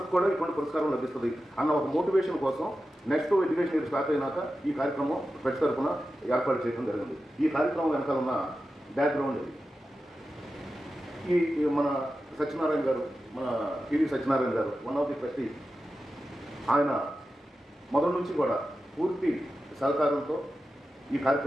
కూడా ఇటువంటి పురస్కారం లభిస్తుంది అన్న ఒక మోటివేషన్ కోసం నెక్స్ట్ ఎడ్యుకేషన్ ఇయర్ స్టార్ట్ అయినాక ఈ కార్యక్రమం ప్రతి తరఫున ఏర్పాటు చేయడం జరిగింది. ఈ కార్యక్రమం వెనకాల ఉన్న బ్యాక్గ్రౌండ్ ఇది. ఈ మన సత్యనారాయణ గారు, మన టీవీ సత్యనారాయణ గారు, వన్ ఆఫ్ ది ట్రస్టీ, ఆయన మొదటి నుంచి కూడా పూర్తి సహకారంతో ఈ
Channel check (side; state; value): both; normal; correlation 0.92